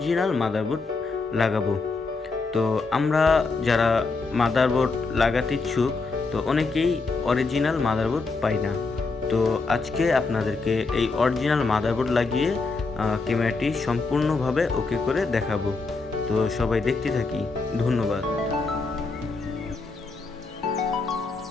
মাদারবোর্ড লাগাবো। তো আমরা যারা মাদারবোর্ড লাগাতে ইচ্ছুক, তো অনেকেই অরিজিনাল মাদারবোর্ড পাই না। তো আজকে আপনাদেরকে এই অরিজিনাল মাদারবোর্ড লাগিয়ে ক্যামেরাটি সম্পূর্ণভাবে ওকে করে দেখাবো। তো সবাই দেখতে থাকি। ধন্যবাদ।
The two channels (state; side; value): quieter; right; 4.0 dB